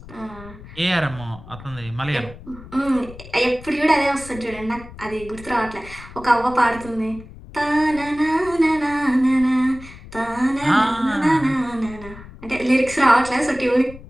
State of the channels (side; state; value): left; noise; rumble, 17 dB below the sound